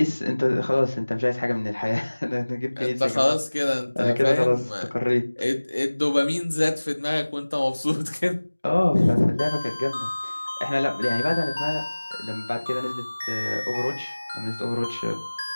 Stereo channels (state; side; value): inverted; both; correlation -1.00